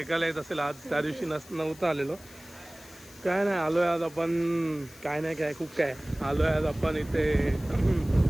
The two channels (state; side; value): noise; left; hiss, 21 dB below the sound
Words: येत असेल. आज त्या दिवशी नव्हतं आलेलो. काय नाही आलो आहे आज आपण. काय नाही काय खूप काय आलो आहे आज आपण इथे.